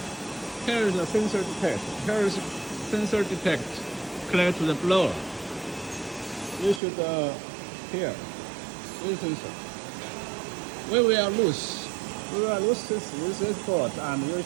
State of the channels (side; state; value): left; drops out; at 6.8 s